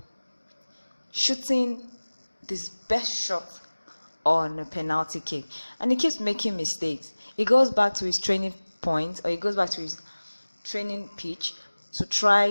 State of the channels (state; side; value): inverted; both; correlation -1.00